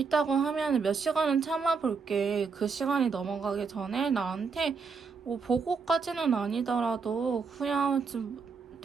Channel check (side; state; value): left; quieter; 5.1 dB